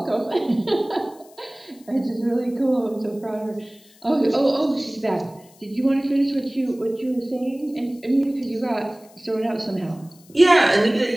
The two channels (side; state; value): left; noise; hiss, 27 dB below the sound